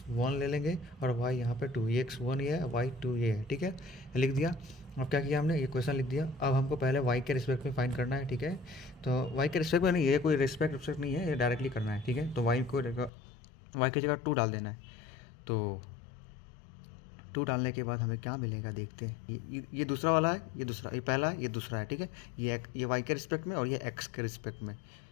ले लेंगे और y यहाँ पे 2, ये x1 ये है, y2 ये है, ठीक है। लिख दिया। अब क्या किया हमने, ये क्वेश्चन लिख दिया। अब हमको पहले y के रिस्पेक्ट में फाइंड करना है, ठीक है। तो y के रिस्पेक्ट में नहीं, ये कोई रिस्पेक्ट नहीं है, ये डायरेक्टली करना है, ठीक है। तो y की जगह 2 डाल देना है। तो 2 डालने के बाद हमें क्या मिलेगा देखते हैं। ये दूसरा वाला है, ये दूसरा, ये पहला है, ये दूसरा है, ठीक है। ये y के रिस्पेक्ट में और ये x के रिस्पेक्ट में,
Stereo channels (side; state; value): right; drops out; at 13.1 s